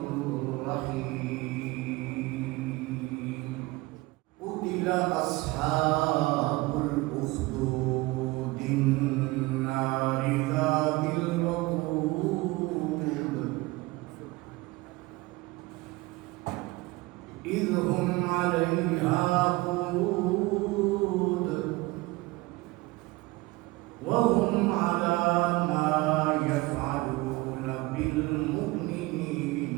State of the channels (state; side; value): quieter; left; 21.6 dB